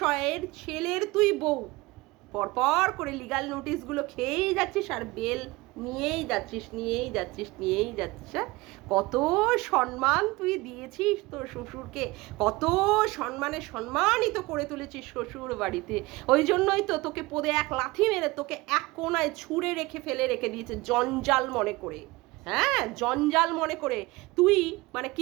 ছেলের তুই বউ, পরপর করে লিগাল নোটিশগুলো খেয়েই যাচ্ছিস আর বেল নিয়েই যাচ্ছিস। কত সম্মান তুই দিয়েছিস তোর শ্বশুরকে, কত সম্মানিত করে তুলেছিস শ্বশুর বাড়িতে, ওই জন্যই তো তোকে পদে এক লাথি মেরে তোকে এক কোনায় ছুঁড়ে ফেলে রেখে দিয়েছে জঞ্জাল মনে করে। হ্যাঁ, জঞ্জাল মনে করে তুই মানে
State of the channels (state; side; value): quieter; left; 21.9 dB